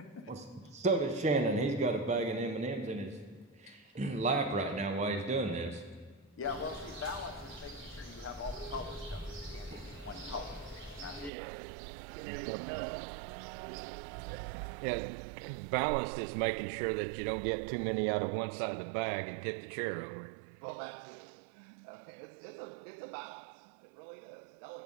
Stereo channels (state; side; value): drops out; left; at 11.3 s